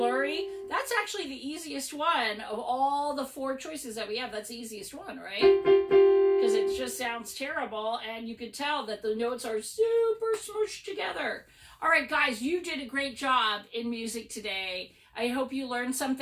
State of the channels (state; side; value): identical; both; correlation 1.00